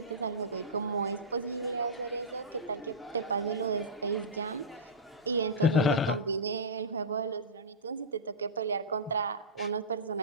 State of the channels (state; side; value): normal; both; correlation -0.18